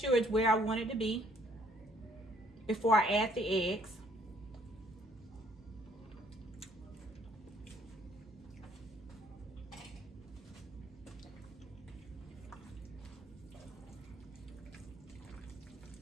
it's where I want it to be before I add the eggs.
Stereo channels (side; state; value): both; normal; correlation 0.63